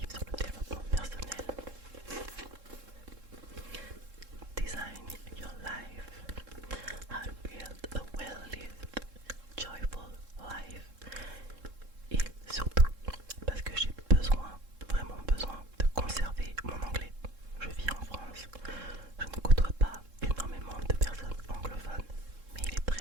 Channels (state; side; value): late; left; 3.7 ms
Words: sur le développement personnel. Design your life. How to build a well-lived, joyful life. Et surtout parce que j'ai besoin, vraiment besoin de conserver mon anglais. Je vis en France, je ne côtoie pas énormément de personnes anglophones, mais il est